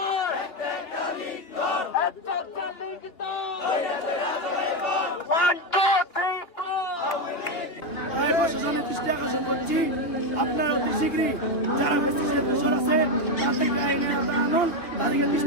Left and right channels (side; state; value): right; late; 2.9 ms